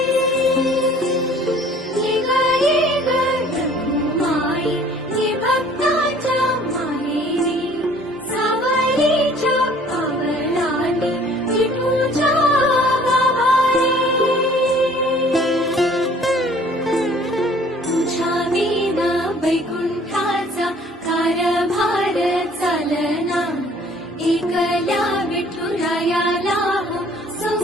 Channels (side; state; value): both; normal; correlation 0.54